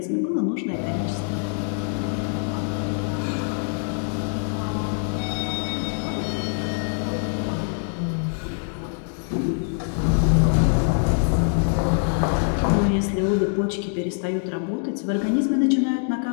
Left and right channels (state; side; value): silent; right; 62 dB below the other